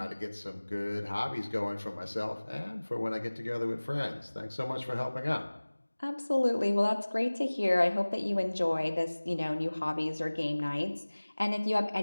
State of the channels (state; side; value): inverted; both; correlation -1.00